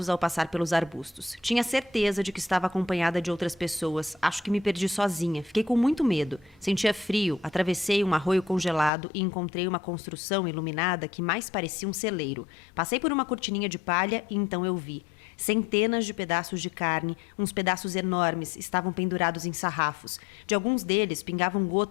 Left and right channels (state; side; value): drops out; right; at 8.9 s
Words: ao passar pelos arbustos. Tinha certeza de que estava acompanhada de outras pessoas. Acho que me perdi sozinha. Fiquei com muito medo. Sentia frio, atravessei um arroio congelado e encontrei uma construção iluminada que mais parecia um celeiro. Passei por uma cortininha de palha e então eu vi. Centenas de pedaços de carne, uns pedaços enormes, estavam pendurados em sarrafos. De alguns deles pingavam